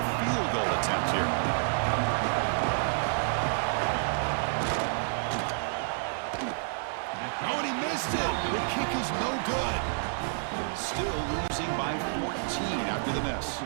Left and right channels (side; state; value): left; silent; digital silence